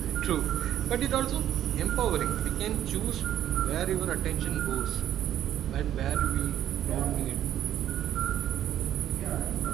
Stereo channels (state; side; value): quieter; left; 11.4 dB